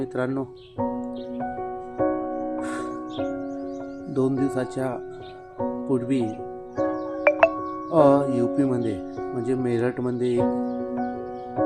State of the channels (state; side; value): identical; both; correlation 1.00